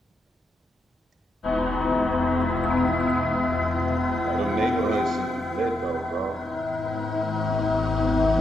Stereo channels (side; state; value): both; normal; correlation 0.83